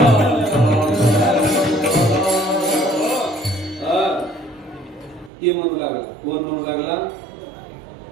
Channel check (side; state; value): left; drops out; at 5.3 s